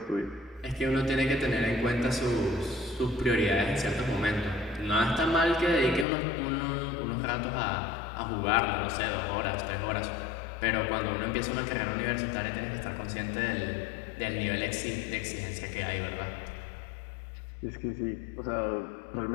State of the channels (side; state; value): right; drops out; at 6.1 s